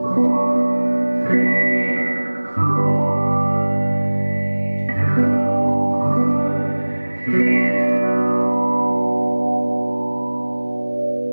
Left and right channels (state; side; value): inverted; both; correlation -1.00